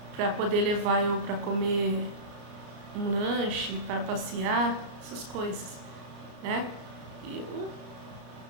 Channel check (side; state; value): left; late; 34 ms